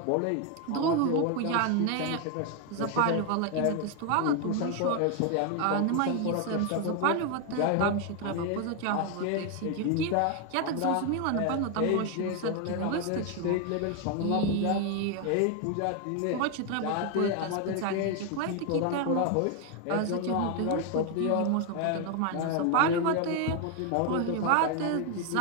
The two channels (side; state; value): both; different; correlation 0.01